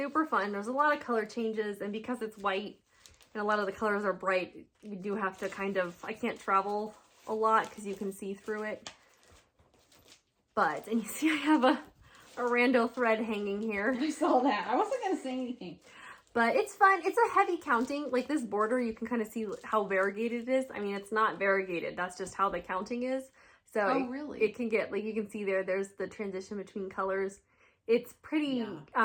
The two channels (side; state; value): both; identical; correlation 1.00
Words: fun. There's a lot of color changes, and because it's white and a lot of the colors are bright, you do have to kind of, I can't travel a lot because you can see through it. But, and you see I have a rando thread hanging here. I saw that. I wasn't going to say anything. But it's fun. It's a heavy counting. Like this border, you can kind of see how variegated it is. I mean, it's not variegated. That's just how the counting is. So really? It can get, like you can see there's the transition between colors. It's pretty